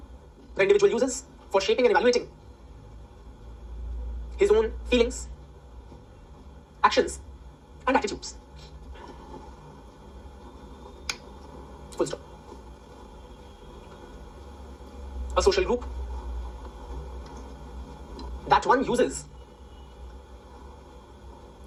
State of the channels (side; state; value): both; identical; correlation 1.00